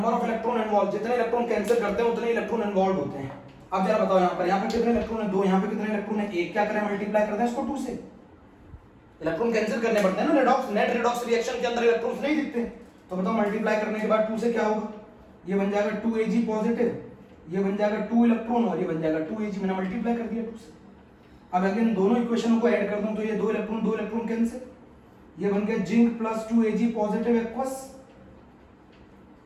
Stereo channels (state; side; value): identical; both; correlation 1.00